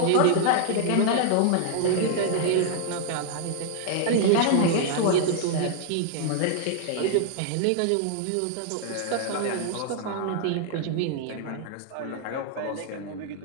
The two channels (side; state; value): both; different; correlation 0.00